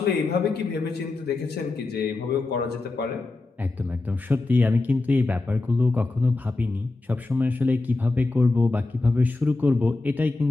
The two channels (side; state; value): right; quieter; 3.3 dB